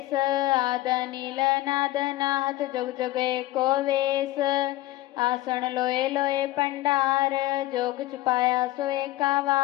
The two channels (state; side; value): quieter; right; 16.9 dB